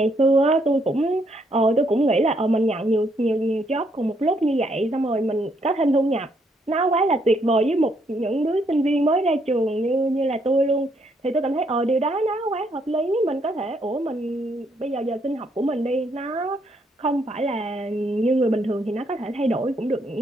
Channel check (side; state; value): both; normal; correlation 0.72